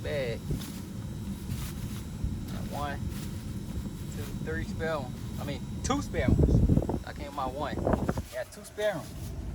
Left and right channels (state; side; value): identical; both; correlation 1.00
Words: 1, 2, 3 spare ones. 2 spare ones. I came my 1. Got 2 spare ones.